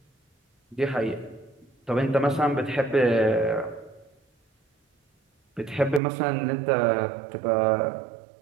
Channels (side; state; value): left; drops out; at 6.0 s